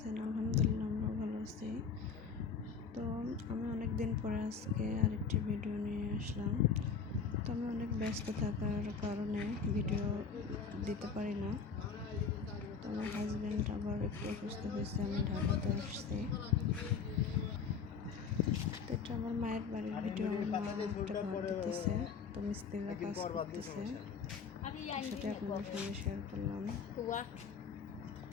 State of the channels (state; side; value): quieter; right; 5.9 dB